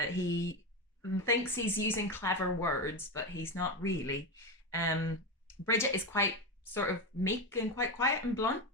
thinks he's using clever words, but he's not really. Bridget is quite sort of meek and quite quiet and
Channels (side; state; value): both; normal; correlation 0.15